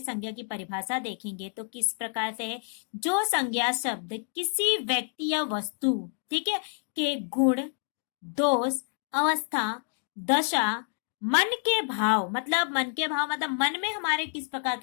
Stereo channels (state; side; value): silent; right; 58 dB below the other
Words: संज्ञा की परिभाषा देखेंगे तो किस प्रकार से है, जो संज्ञा शब्द किसी व्यक्ति या वस्तु, ठीक है, के गुण, दोष, अवस्था, दशा, मन के भाव, मतलब मन के भाव मतलब मन में हमारे किस प्रकार